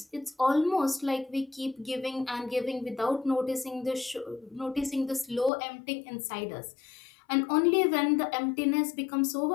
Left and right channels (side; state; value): right; drops out; at 5.5 s